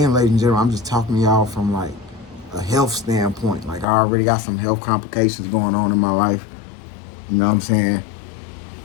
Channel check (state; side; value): drops out; right; at 3.9 s